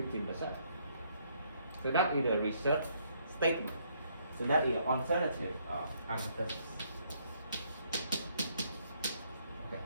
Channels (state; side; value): inverted; both; correlation -0.69